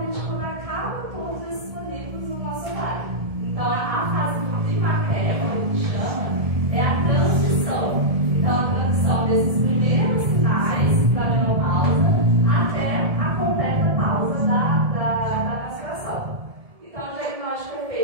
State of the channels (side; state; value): left; late; 1.7 ms